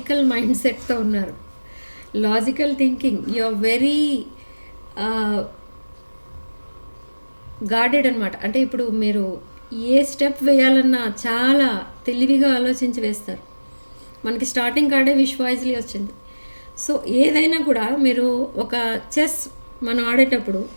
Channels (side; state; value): both; inverted; correlation -1.00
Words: మైండ్ సెట్తో ఉన్నారు. Logical thinking, you are very guarded అనమాట. అంటే ఇప్పుడు మీరు ఏ స్టెప్ వేయాలన్నా చాలా తెలివిగా ఆలోచించి వేస్తారు. మనకి స్టార్టింగ్ కార్డే విష్ వాయిస్లీ వచ్చింది. సో ఏదైనా కూడా మీరు ఒక చెస్ మనం ఆడేటప్పుడు,